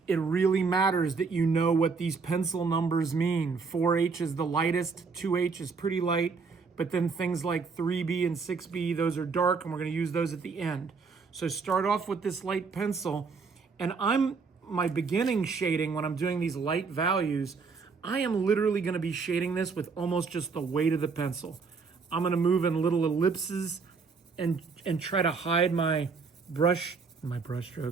It really matters that you know what these pencil numbers mean. 4H is the lightest, 2H is pretty light, but then things like 3B and 6B, those are dark, and we're going to use those at the end. So start off with this light pencil, and my beginning shading when I'm doing these light values, I am literally going to be shading this with almost just the weight of the pencil. I'm going to move in little ellipses and try to hide my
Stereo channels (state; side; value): quieter; left; 4.9 dB